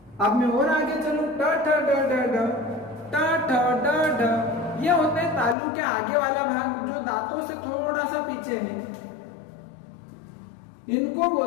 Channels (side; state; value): right; drops out; at 5.6 s